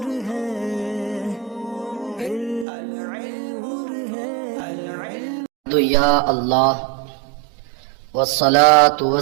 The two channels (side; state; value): left; drops out; at 2.7 s